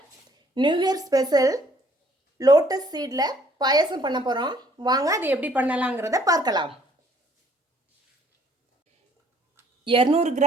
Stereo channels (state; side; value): normal; both; correlation 0.61